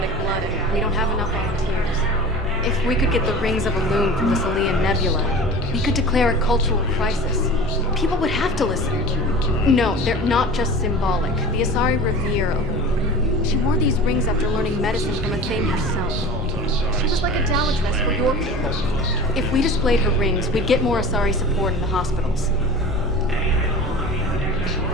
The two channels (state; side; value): normal; both; correlation 0.37